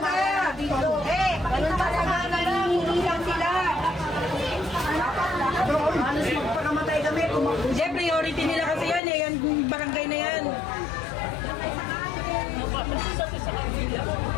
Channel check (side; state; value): right; drops out; at 9.0 s